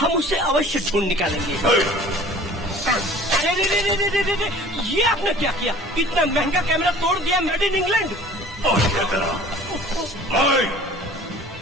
उसे अवश्य ढूंढ निकालेंगे। अरे ये आपने क्या किया? इतना महंगा कैमरा तोड़ दिया, मेड इन इंग्लैंड। और क्या करा?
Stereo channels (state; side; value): normal; both; correlation 0.47